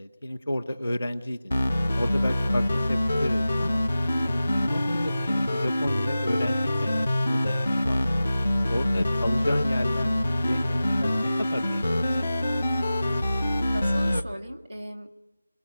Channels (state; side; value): inverted; both; correlation -0.96